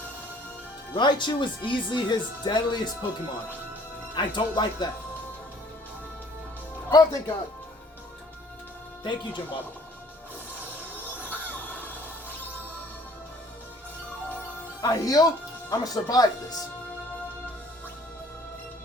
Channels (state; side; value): normal; both; correlation 0.56